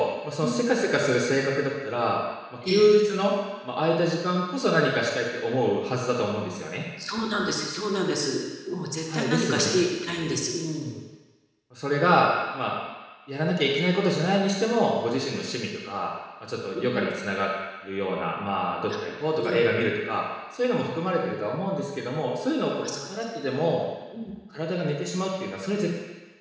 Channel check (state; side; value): identical; both; correlation 1.00